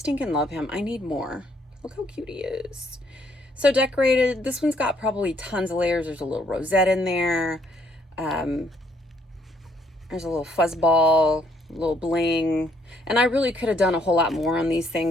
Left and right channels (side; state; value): both; normal; correlation 0.67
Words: love him. I need more. Look how cute he is. So decorated. This one's got probably tons of layers. There's a little rosette in there. There's a little fuzz ball, a little bling. And I really could have done a whole lot more on these